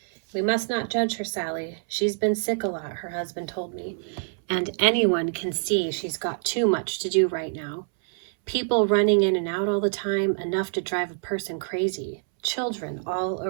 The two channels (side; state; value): left; silent; 61 dB below the other